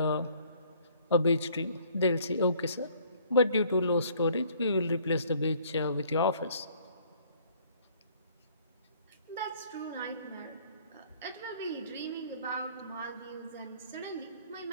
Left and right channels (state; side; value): inverted; both; correlation -0.59